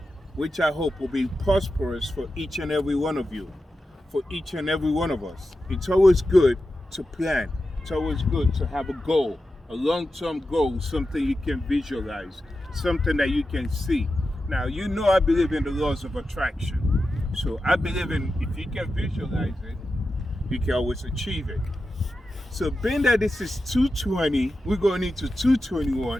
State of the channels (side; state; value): both; normal; correlation 0.91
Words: which I hope will be prosperous for each and every one of you, for each and every one of us. It's always good to plan. It's always good to have a goal, a long-term goal, something you can visualize, something that you can see. Now, you know I believe in the laws of attraction. So I believe in if you can visualize it, you can always achieve it. So being that this is 220, we're going into 221.